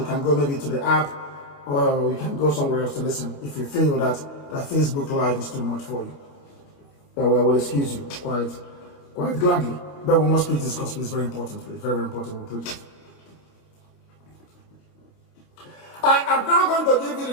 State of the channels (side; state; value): right; late; 29 ms